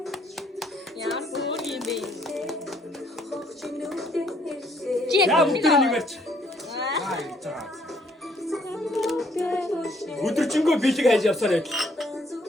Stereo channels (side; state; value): both; normal; correlation 0.65